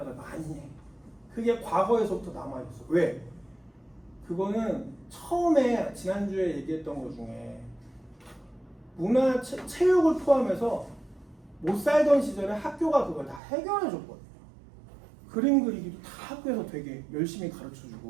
많이 해. 그게 과거에서부터 남아있어. 왜? 그거는 처음에 지난주에 얘기했던 것 중에 문화, 체육을 포함해서 못 살던 시절에 학교가 그걸 다 해결해줬거든요. 그림 그리기도 다 학교에서 되게 열심히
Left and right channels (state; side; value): drops out; left; at 13.4 s